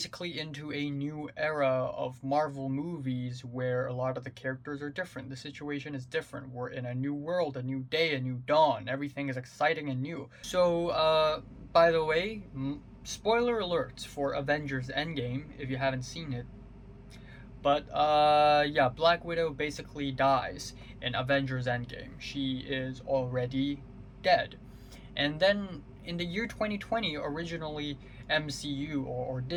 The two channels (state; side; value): identical; both; correlation 1.00